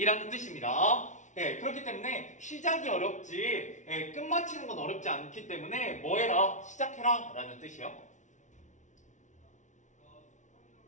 뜻입니다. 그렇기 때문에 시작이 어렵지 끝마치는 건 어렵지 않기 때문에 뭐 해라? 시작해라 라는 뜻이요.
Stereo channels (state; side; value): late; right; 0.36 ms